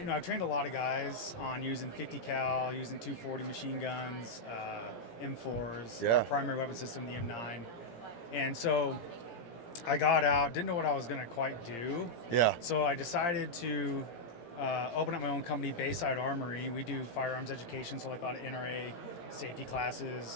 trained a lot of guys on using 50 cal, using 240 machine guns, M4s, Yeah. our primary weapon system, the M9. And so I got out, didn't know what I was going to quite do. Yeah. So I decided to open up my own company, Bayside Armory. We do firearms education, so like a lot of NRA safety classes.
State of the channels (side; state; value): right; late; 17 ms